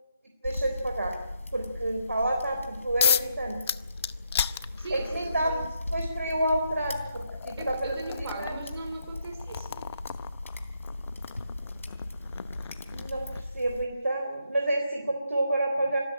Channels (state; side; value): inverted; both; correlation -0.77